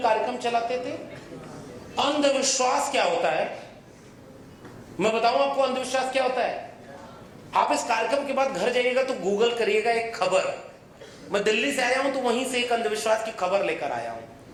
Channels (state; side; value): identical; both; correlation 1.00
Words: कार्यक्रम चलाते थे। अंधविश्वास क्या होता है मैं बताऊं आपको। अंधविश्वास क्या होता है? आप इस कार्यक्रम के बाद घर जाइएगा तो गूगल करिएगा एक खबर। मैं दिल्ली से आया हूं तो वहीं से एक अंधविश्वास की खबर लेकर आया हूं।